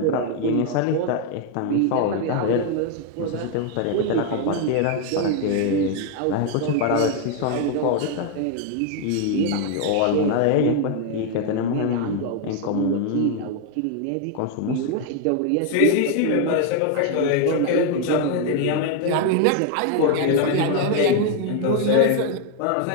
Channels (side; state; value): both; different; correlation 0.01